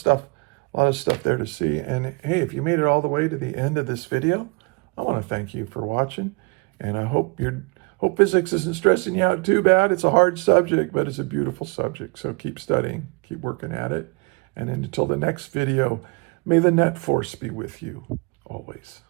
there to see. And hey, if you made it all the way to the end of this video, I want to thank you for watching, and I hope physics isn't stressing you out too bad. It's a hard subject, but it's a beautiful subject. So keep studying, keep working at it. And until the next video, may the net force be with you always.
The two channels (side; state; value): left; quieter; 30.9 dB